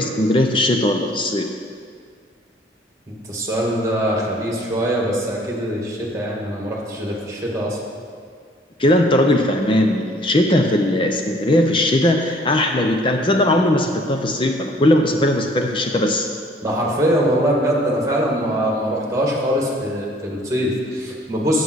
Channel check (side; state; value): both; normal; correlation 0.57